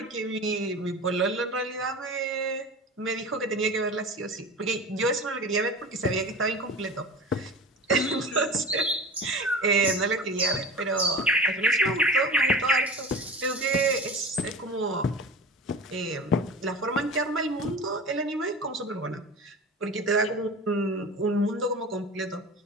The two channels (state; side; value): normal; both; correlation 0.34